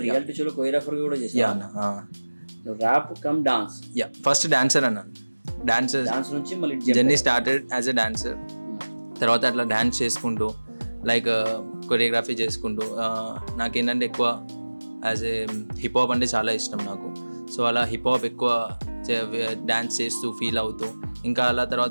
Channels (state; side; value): inverted; both; correlation -1.00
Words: రియాలిటీ షోలో కొరియోగ్రాఫర్గా కూడా చేసావు? యా అన్న. Rap cum dance? Yeah, first dancer అన్న. డాన్స్ నుంచి మళ్ళీ journey started as a dancer. తర్వాత అట్లా డాన్స్ చేసుకుంటూ లైక్ కొరియోగ్రఫీ చేసుకుంటూ నాకేంటంటే ఎక్కువ యాజ్ ఏ హిప్ హాప్ అంటే చాలా ఇష్టం నాకు. సో అలా హిప్ హాప్ ఎక్కువ డ్యాన్స్ చేస్తూ ఫీల్ అవుతూ, ఇంకా అలా